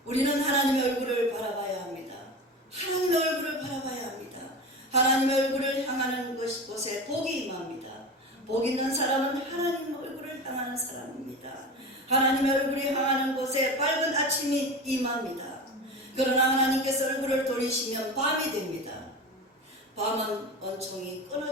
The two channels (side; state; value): both; normal; correlation 0.29